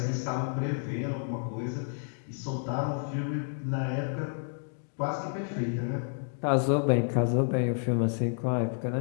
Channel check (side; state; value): right; silent; digital silence